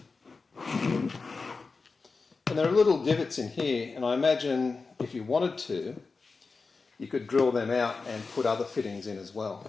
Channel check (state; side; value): quieter; right; 4.3 dB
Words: And there are little divots in here, and I imagine if you wanted to, you could drill them out and put other fittings in as